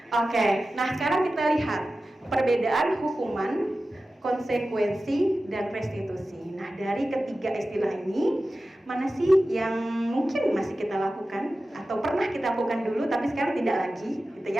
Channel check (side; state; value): both; normal; correlation 0.94